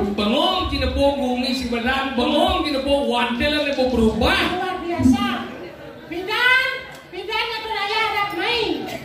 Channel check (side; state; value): both; identical; correlation 1.00